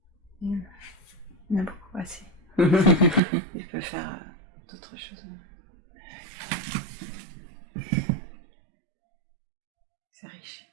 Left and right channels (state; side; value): drops out; left; at 3.2 s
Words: Il a beaucoup assez. Il peut faire d'autres choses. C'est riche.